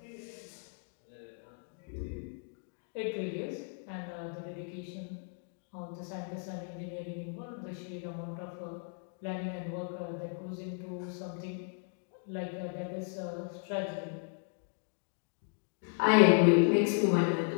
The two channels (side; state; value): right; silent; 54 dB below the other